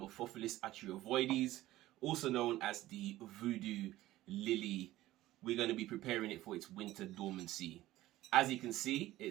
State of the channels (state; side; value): quieter; left; 15.9 dB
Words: Atroviridis, also known as the Voodoo lily. We're going to be preparing it for its winter dormancy. As you can see,